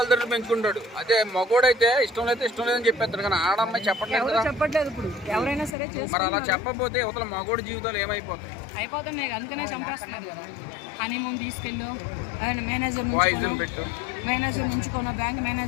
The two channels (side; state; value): right; drops out; at 5.8 s